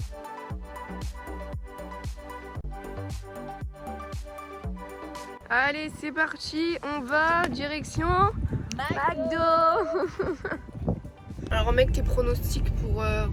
Allez, c'est parti, on va direction McDo. Alors mec, tes pronostics pour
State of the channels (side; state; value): both; identical; correlation 1.00